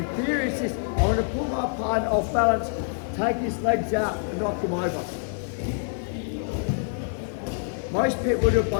theory is this, I want to pull my partner off balance, take his legs out and knock him over. Most people do it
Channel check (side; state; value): right; silent; digital silence